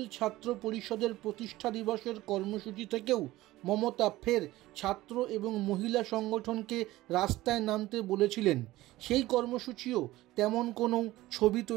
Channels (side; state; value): left; quieter; 17.2 dB